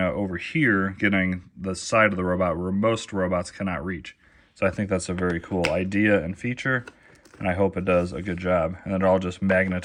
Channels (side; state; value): both; identical; correlation 1.00